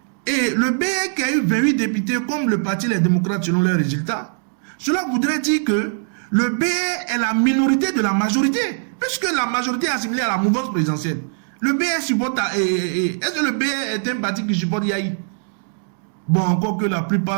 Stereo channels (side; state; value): left; silent; digital silence